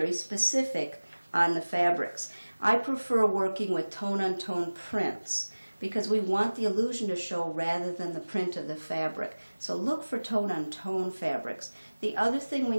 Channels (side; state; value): both; inverted; correlation -1.00